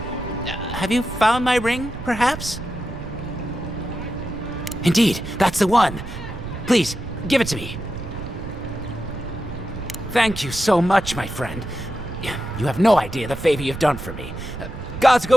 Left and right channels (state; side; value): noise; right; rumble, 10 dB below the sound